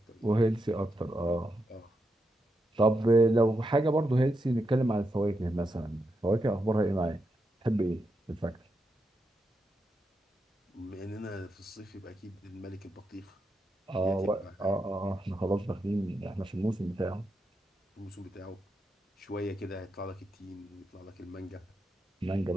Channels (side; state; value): both; normal; correlation 0.84